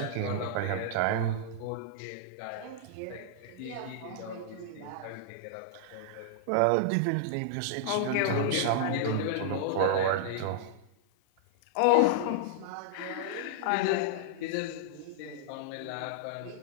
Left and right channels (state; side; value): different; both; correlation -0.01